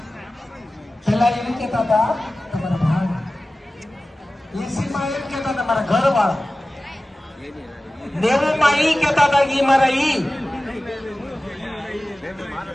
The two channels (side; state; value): both; normal; correlation 0.96